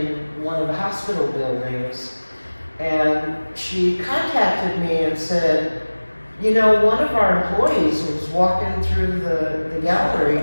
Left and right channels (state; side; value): inverted; both; correlation -1.00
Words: one of the hospital buildings. And she contacted me and said, you know, one of our employees was walking through the gallery